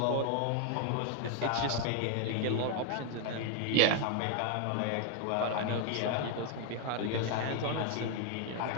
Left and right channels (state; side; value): different; both; correlation 0.01